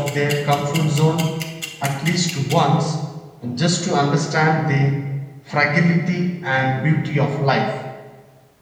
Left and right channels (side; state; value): both; identical; correlation 1.00